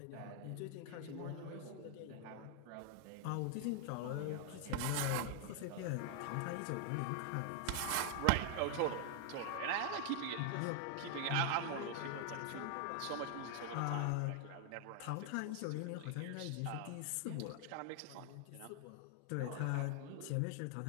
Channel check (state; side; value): different; both; correlation 0.00